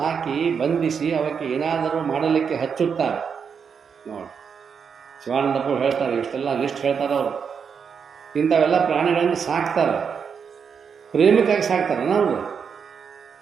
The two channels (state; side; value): quieter; left; 6.5 dB